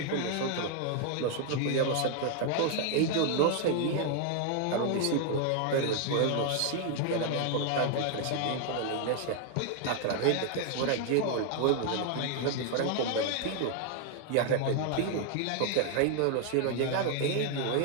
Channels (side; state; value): both; different; correlation 0.00